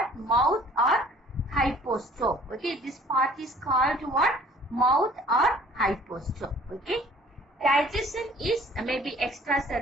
Mouth or hypostome. Okay, this part is called what? Mouth or hypostome. Okay, digestion is maybe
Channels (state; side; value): normal; both; correlation 0.53